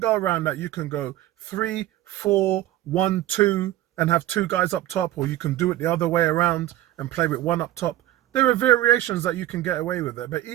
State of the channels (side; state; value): left; quieter; 14.4 dB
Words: around that. You can go 3, 4, 1, 2 and have 2 guys up top, or you can do it the other way around and play with 1 up top. There are variations that you can get away with it. But